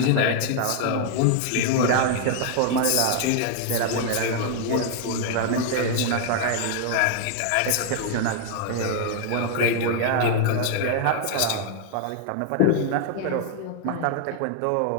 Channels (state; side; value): different; both; correlation 0.00